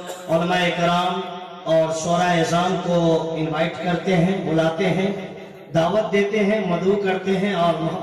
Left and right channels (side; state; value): both; identical; correlation 1.00